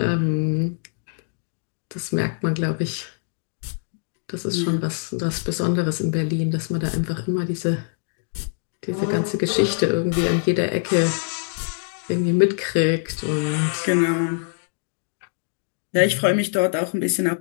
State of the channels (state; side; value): silent; right; digital silence